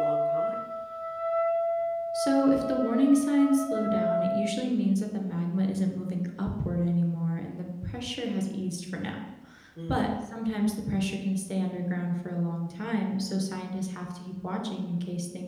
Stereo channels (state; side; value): identical; both; correlation 1.00